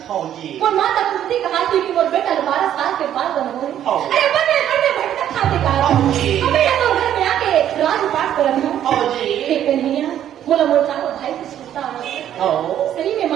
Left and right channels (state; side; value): quieter; left; 10.8 dB